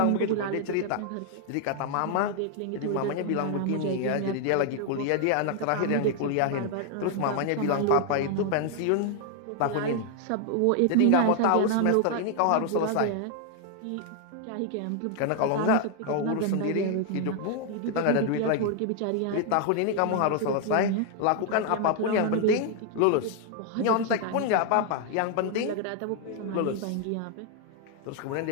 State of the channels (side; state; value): both; different; correlation 0.00